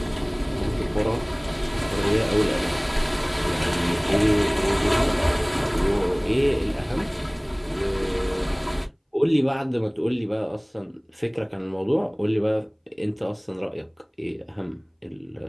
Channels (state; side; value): identical; both; correlation 1.00